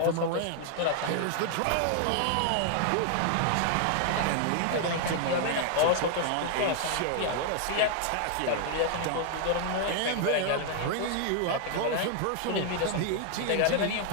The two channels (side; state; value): both; different; correlation 0.00